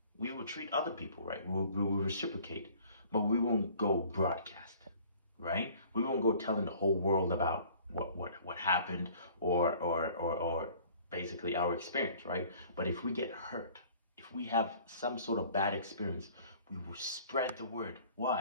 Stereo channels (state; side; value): inverted; both; correlation -0.52